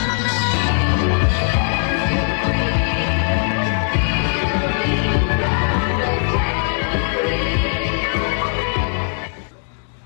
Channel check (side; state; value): right; silent; 57 dB below the other